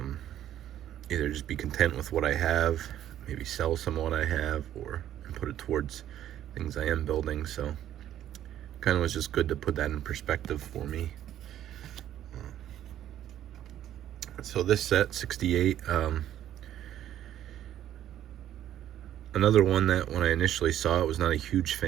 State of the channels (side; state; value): left; quieter; 11.6 dB